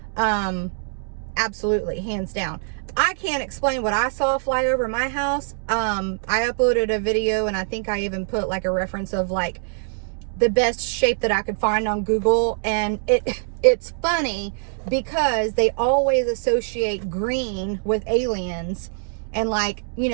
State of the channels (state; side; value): silent; left; digital silence